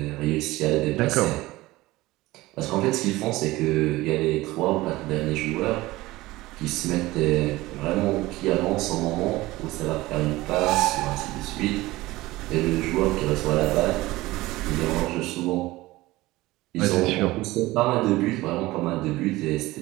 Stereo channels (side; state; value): left; quieter; 18.9 dB